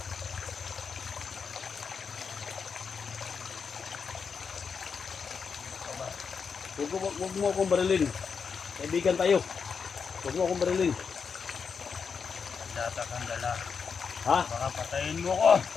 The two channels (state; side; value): quieter; right; 5.9 dB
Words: Huwag mo akong barilin. Kaibigan tayo. Huwag mo akong barilin. Data kang dala. Ha? Baka patayin mo ko.